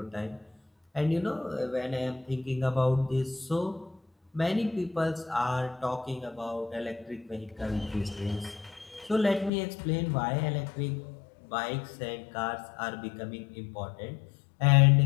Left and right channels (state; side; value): drops out; right; at 9.5 s